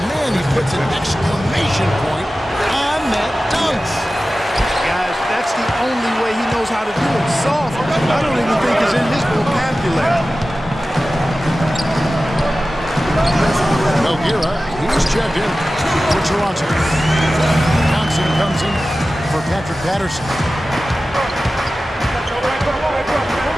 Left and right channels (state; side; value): normal; both; correlation 0.95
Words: man, he puts an exclamation point on that dunk. Guys, that's the only way he knows how to do it. Soft, I don't even think is in his vocabulary. Nogueira, he's checked in for Toronto. Thompson comes in for Patrick Patterson.